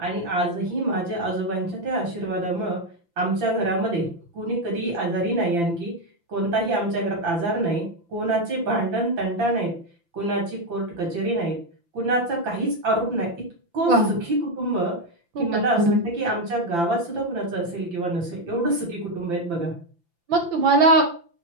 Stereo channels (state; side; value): late; left; 5.9 ms